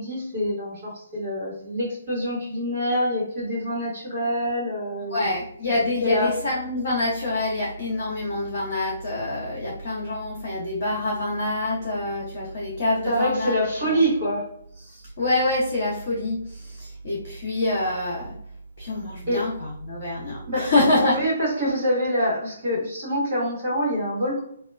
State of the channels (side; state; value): both; inverted; correlation -0.62